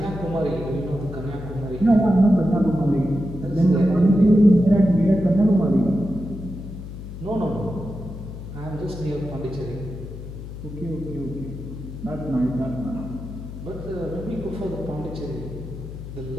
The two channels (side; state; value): left; noise; hum, 11 dB below the sound